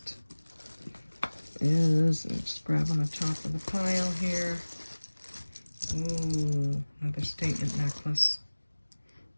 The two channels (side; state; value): both; inverted; correlation -1.00